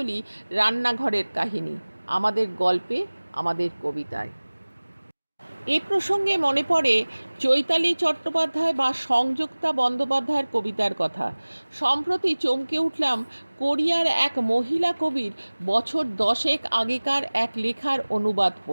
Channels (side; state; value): both; inverted; correlation -1.00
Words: রান্নাঘরের কাহিনী, আমাদের গল্পে, আমাদের কবিতায়। এ প্রসঙ্গে মনে পড়ে চৈতালি চট্টোপাধ্যায় বা সংযুক্তা বন্দ্যোপাধ্যায়ের কবিতার কথা। সম্প্রতি চমকে উঠলাম কোরিয়ার এক মহিলা কবির বছর 10 আগেকার এক লেখার অনুবাদ